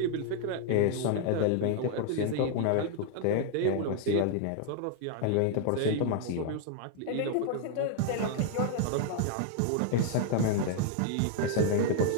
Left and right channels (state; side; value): different; both; correlation 0.00